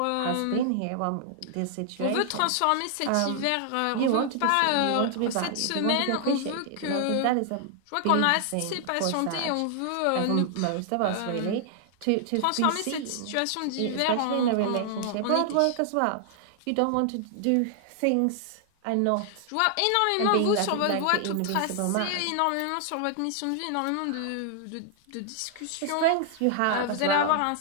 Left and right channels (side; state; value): both; different; correlation 0.00